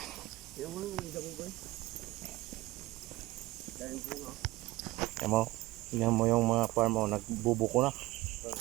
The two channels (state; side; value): quieter; left; 19.0 dB